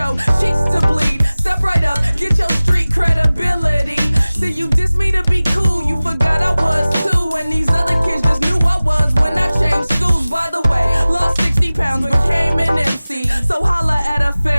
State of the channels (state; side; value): inverted; both; correlation -0.98